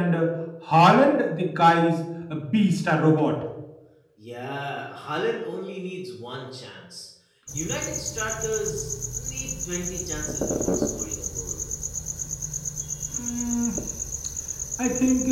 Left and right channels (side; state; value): both; identical; correlation 1.00